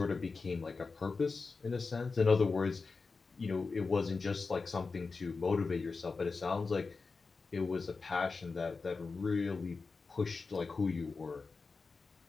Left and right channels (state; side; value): quieter; right; 4.3 dB